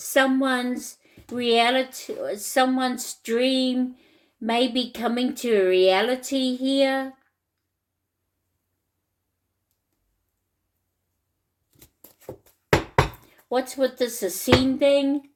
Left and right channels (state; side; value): identical; both; correlation 1.00